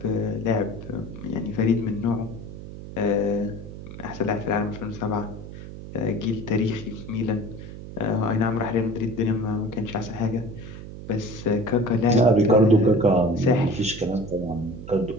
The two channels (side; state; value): right; noise; hum, 12 dB below the sound